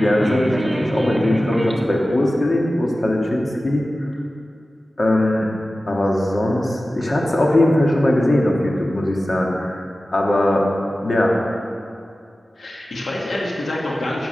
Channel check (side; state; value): both; normal; correlation 0.95